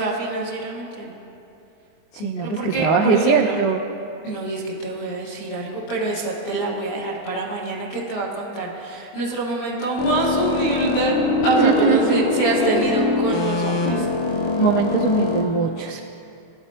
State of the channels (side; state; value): right; late; 25 ms